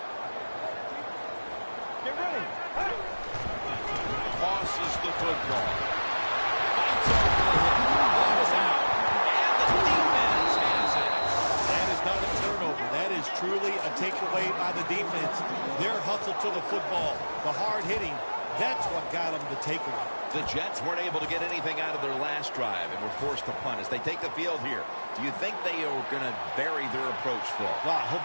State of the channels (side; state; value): both; inverted; correlation -1.00